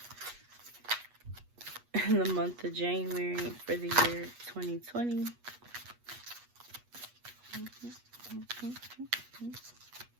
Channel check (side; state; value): left; late; 8.3 ms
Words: in the month of January for the year 2020?